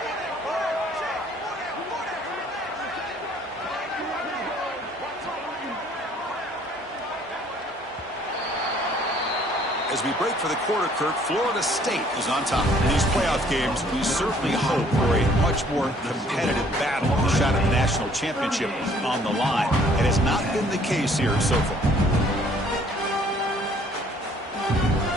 As we break for the quarter, Kirk, Florida State is on top. In these playoff games, we certainly hope for a much more competitive battle. A shot at the national championship on the line. It has not been the case here so far.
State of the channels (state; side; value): normal; both; correlation 0.59